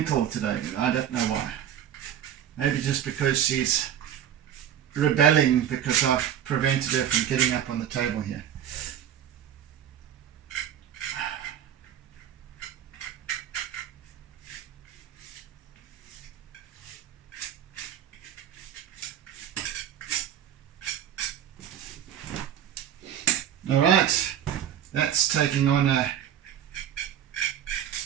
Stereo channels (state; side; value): quieter; left; 10.2 dB